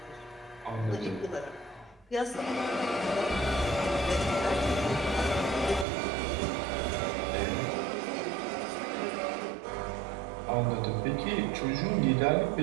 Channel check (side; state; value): left; drops out; at 5.9 s